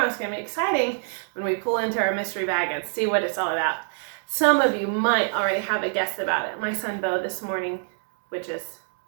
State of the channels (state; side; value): silent; left; 61 dB below the other